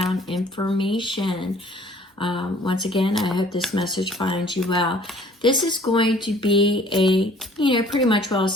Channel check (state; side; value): normal; both; correlation 0.54